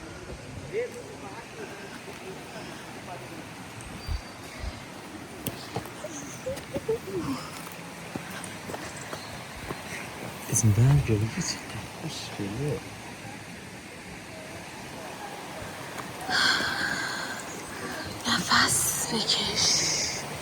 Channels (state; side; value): identical; both; correlation 1.00